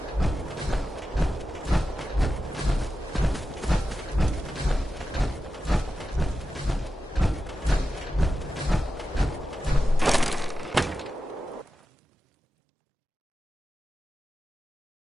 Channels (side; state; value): both; normal; correlation 0.91